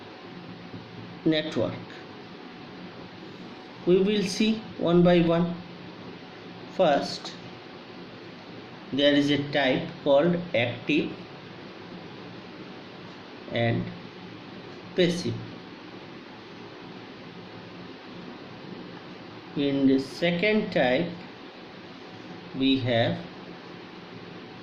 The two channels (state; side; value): identical; both; correlation 1.00